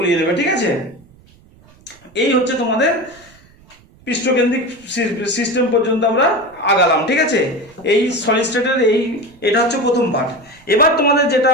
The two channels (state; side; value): noise; right; rumble, 28 dB below the sound